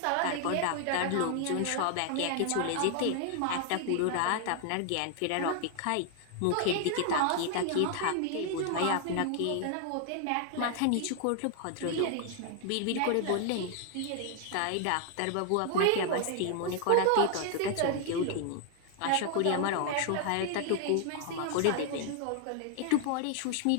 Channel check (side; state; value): both; different; correlation 0.00